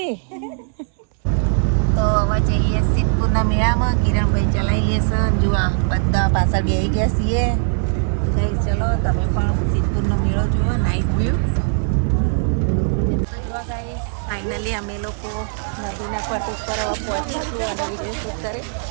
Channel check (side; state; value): left; silent; digital silence